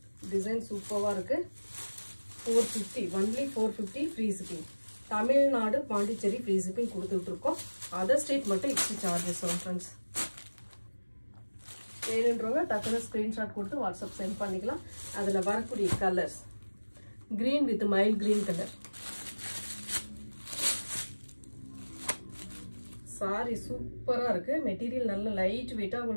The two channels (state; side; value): inverted; both; correlation -1.00